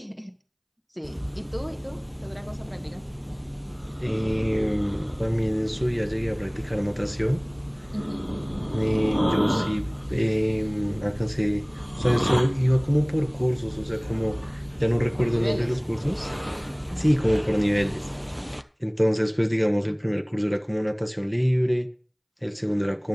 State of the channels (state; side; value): identical; both; correlation 1.00